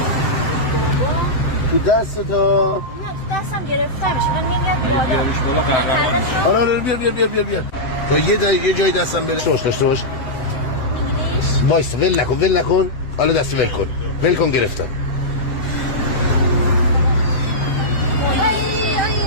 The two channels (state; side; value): late; right; 7.7 ms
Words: تو دست تو تو دستم گرفته میشه من نمیاد بالا. بیارش بالا قهرمان میشه. آره بیا تا یه جای دستم بره شوش داشته باش وایس ول نکن حالا دست ول کن گرفتم